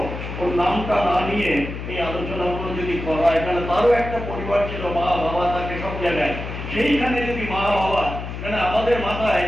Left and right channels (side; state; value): left; noise; hum, 7 dB below the sound